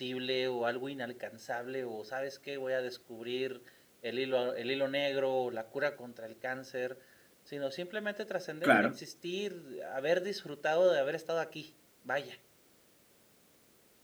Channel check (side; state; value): both; identical; correlation 1.00